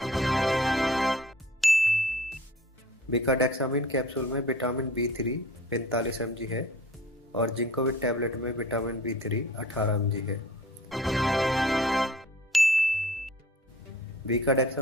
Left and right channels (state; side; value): normal; both; correlation 0.47